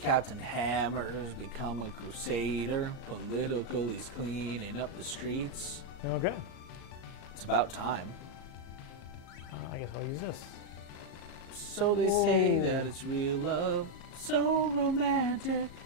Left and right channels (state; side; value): late; right; 37 ms